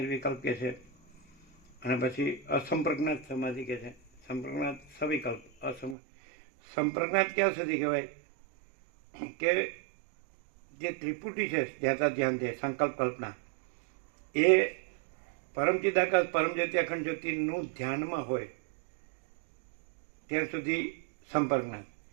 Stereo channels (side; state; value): left; drops out; at 6.0 s